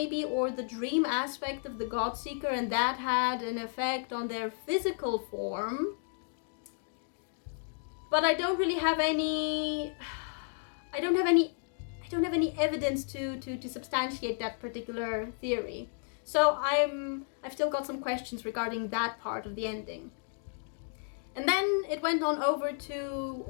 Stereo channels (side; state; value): right; silent; 56 dB below the other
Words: or the dream aspect of the Godseeker, and that had an effect on their physical form. But I don't really have any evidence to substantiate that particular theory. So I've still got some questions regarding that part of the ending. And then it went on over to